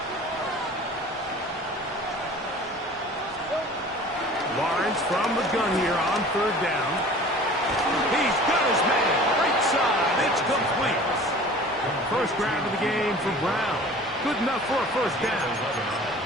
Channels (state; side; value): normal; both; correlation 0.44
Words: Lawrence from the gun here on 3rd down. He's got his man. Right side. It's complete. First grab of the game for Brown. Good enough for a first down.